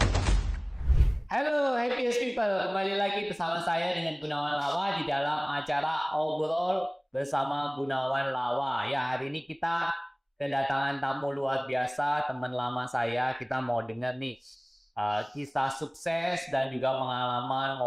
Halo happiest people, kembali lagi bersama saya dengan Gunawan Lawa di dalam acara Obrol bersama Gunawan Lawa. Ya, hari ini kita kedatangan tamu luar biasa, teman lama saya. Kita mau dengar nih kisah sukses dan juga pengalaman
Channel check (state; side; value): identical; both; correlation 1.00